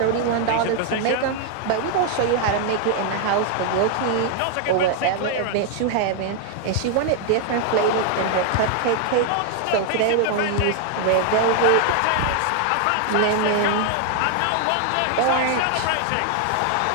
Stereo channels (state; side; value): different; both; correlation 0.00